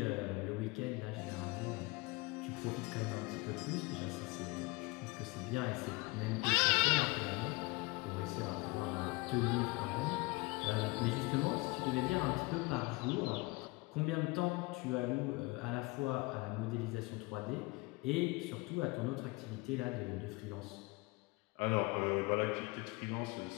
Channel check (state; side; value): quieter; right; 24.9 dB